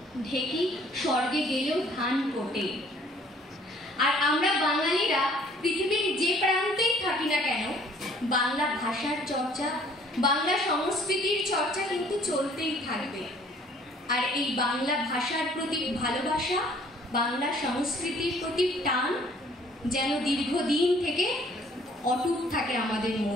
ঢেকি স্বর্গে গেলেও ধান কোটে। আর আমরা বাঙালিরা পৃথিবীর যে প্রান্তেই থাকি না কেন, বাংলা ভাষার চর্চা, বাংলা সংস্কৃতির চর্চা কিন্তু চলতেই থাকবে। আর এই বাংলা ভাষার প্রতি ভালোবাসা, বাংলা সংস্কৃতির প্রতি টান যেন দীর্ঘদিন থেকে অটুট থাকে আমাদের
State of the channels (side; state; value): both; normal; correlation 0.57